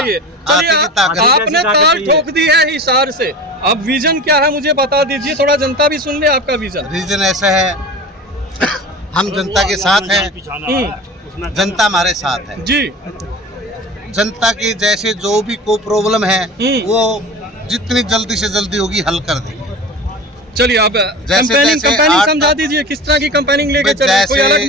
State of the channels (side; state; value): both; normal; correlation 0.34